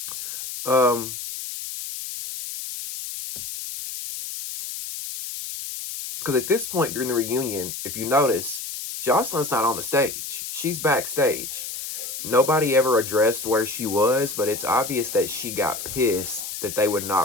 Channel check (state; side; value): noise; left; hiss, 7 dB below the sound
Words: Because at this point during the reunion, if you notice, Joselyn's not on the stage. She's backstage. Nobody ever addressed where she was, but it's obvious that she got pissed that they would